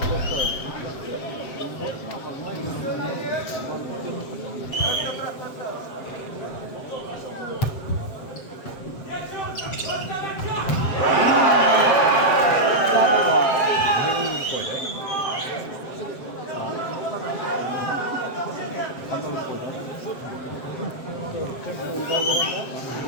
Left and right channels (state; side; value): late; right; 7.7 ms